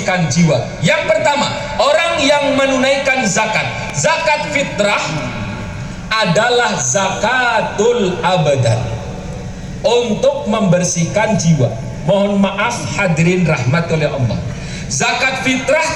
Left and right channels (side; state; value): both; identical; correlation 1.00